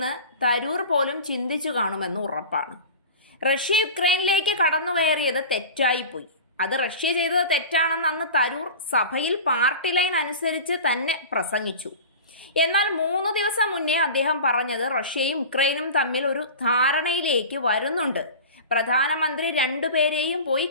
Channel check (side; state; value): both; inverted; correlation -0.33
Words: തരൂർ പോലും ചിന്തിച്ചു കാണുമെന്ന് ഉറപ്പാണ്. റഷ്യ യുക്രൈനിലേക്ക് കടന്നു കയറിയത് തെറ്റായിപ്പോയി. അത് റഷ്യ ചെയ്തത് തെറ്റാണെന്ന് അന്ന് തരൂർ സഭയിൽ പാർട്ടി ലൈൻ അനുസരിച്ച് തന്നെ പ്രസംഗിച്ചു. എന്നാൽ 3 ദിവസം മുന്നേ അദ്ദേഹം പറഞ്ഞത് റഷ്യയും യുക്രൈനും തമ്മിൽ ഒരു ധാരണയിലേക്ക് വരുന്നുണ്ട്, പ്രധാനമന്ത്രി 2 പേരെയും പോയി